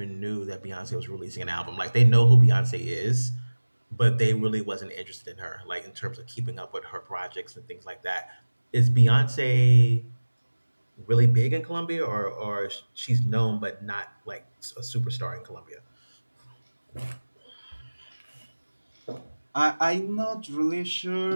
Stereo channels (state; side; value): inverted; both; correlation -1.00